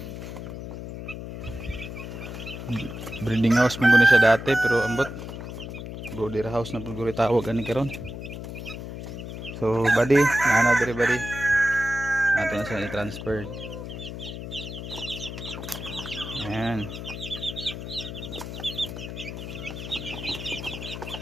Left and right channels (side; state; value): left; noise; hum, 8 dB below the sound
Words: breeding house mo guni siya dati, pero ambot brooder house na pud tawag ani karon. So bali, nanadre bali natin na siya i-transfer. Ayan.